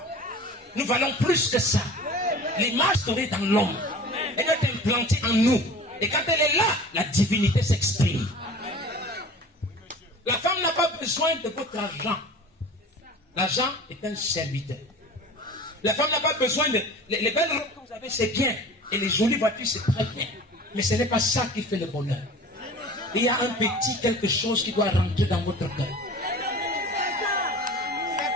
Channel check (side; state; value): both; normal; correlation 0.40